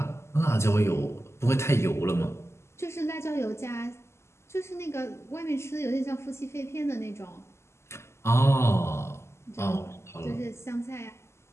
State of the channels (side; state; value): right; late; 0.13 ms